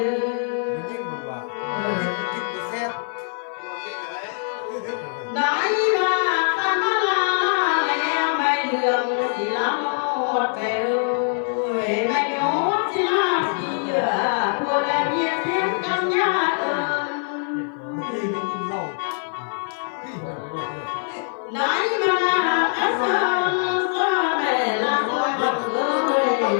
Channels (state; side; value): silent; right; 56 dB below the other